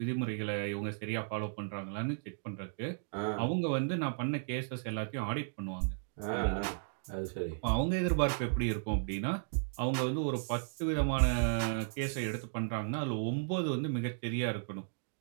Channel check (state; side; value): silent; left; digital silence